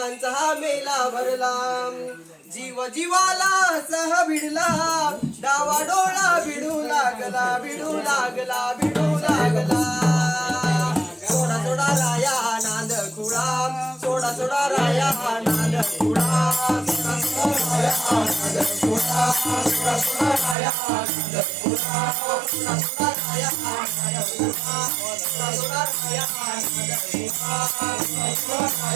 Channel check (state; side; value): drops out; left; at 20.6 s